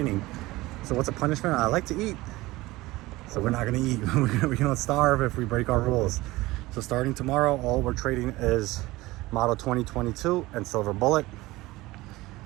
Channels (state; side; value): quieter; left; 19.4 dB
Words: So what's a punishment? I like to eat. So we're not gonna eat. We're gonna starve if we break our rules. So starting tomorrow, all we're trading is Model 2022 and Silver Bullet.